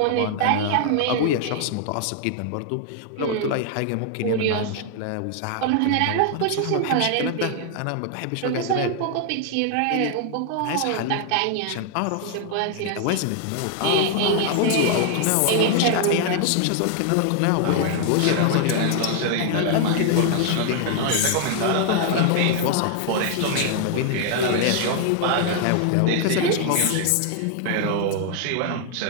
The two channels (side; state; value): both; different; correlation 0.00